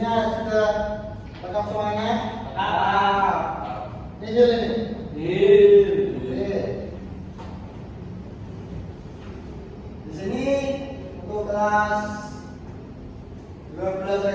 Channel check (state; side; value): identical; both; correlation 1.00